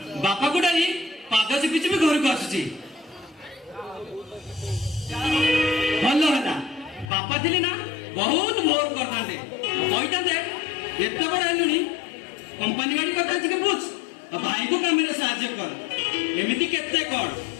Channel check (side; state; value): right; drops out; at 7.1 s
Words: बापा को डाली पाद चिपी चिपी घर को आसुची भल है बापा थे ना बहुत भोर करते कहते एत बड़ आलुनी कंपानी गाड़ी कथा टे बुझ भाई को काम साहाଯ୍य कर एमती केते कर